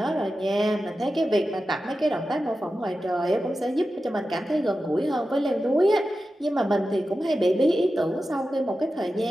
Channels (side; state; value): both; normal; correlation 0.92